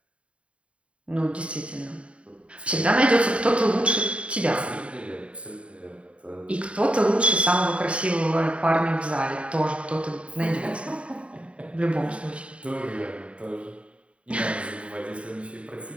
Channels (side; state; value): left; late; 0.061 ms